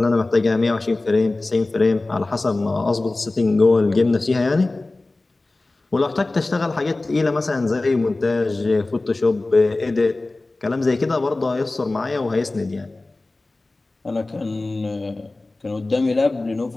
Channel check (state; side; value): quieter; right; 3.1 dB